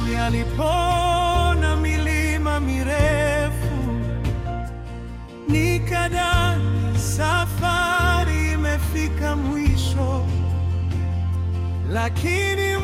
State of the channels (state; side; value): identical; both; correlation 1.00